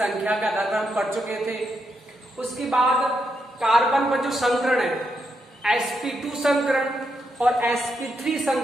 के आधार पर हम पढ़ चुके थे। उसके बाद कार्बन पर जो संकरण है sp2 संकरण और sp3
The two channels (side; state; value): both; normal; correlation 0.81